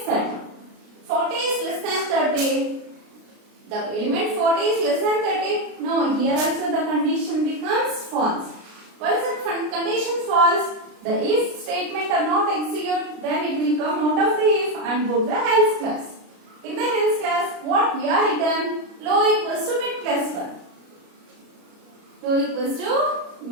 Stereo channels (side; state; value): left; late; 33 ms